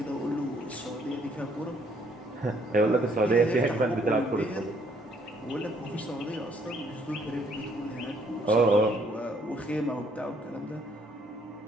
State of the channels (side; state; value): both; normal; correlation 0.66